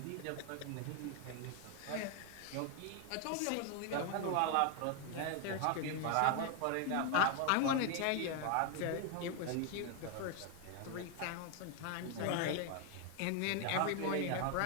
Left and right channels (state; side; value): different; both; correlation 0.01